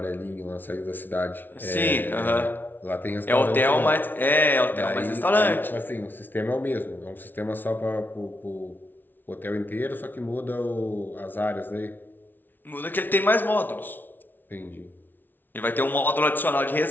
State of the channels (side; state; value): right; late; 0.091 ms